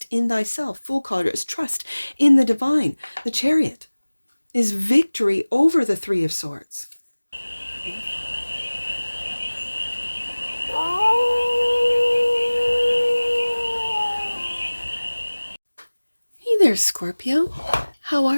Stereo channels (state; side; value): inverted; both; correlation -1.00